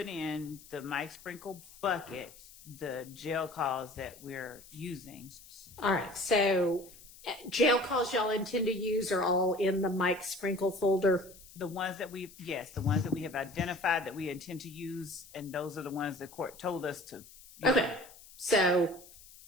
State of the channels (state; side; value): noise; left; hiss, 20 dB below the sound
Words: in the Mike Sprinkle bucket, the jail calls that we're using. All right, so jail calls y'all intend to use are all in the Mike Sprinkle folder? The ones that the ones that we have identified that we intend to use, and those are the ones the court told us to use. Okay, so